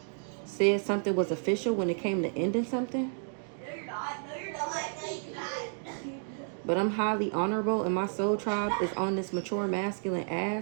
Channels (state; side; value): silent; left; 57 dB below the other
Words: said something was official when it came to ending something. But I'm highly honorable and my soul tribe is on this mature masculine